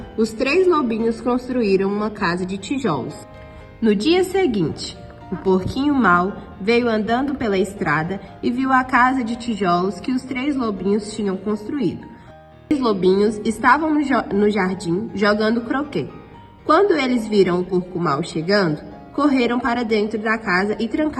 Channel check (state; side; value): identical; both; correlation 1.00